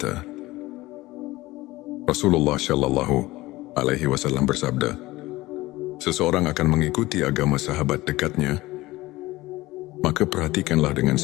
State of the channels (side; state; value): right; quieter; 19.0 dB